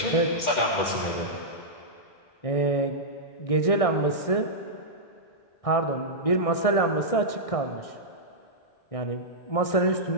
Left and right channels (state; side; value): late; right; 1.6 ms